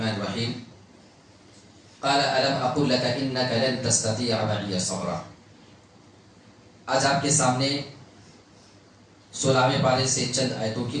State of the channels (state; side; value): identical; both; correlation 1.00